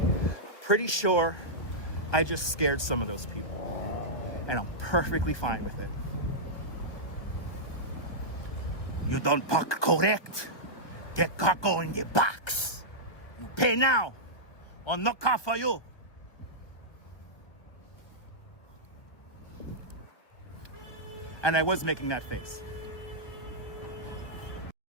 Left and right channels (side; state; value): right; late; 1.3 ms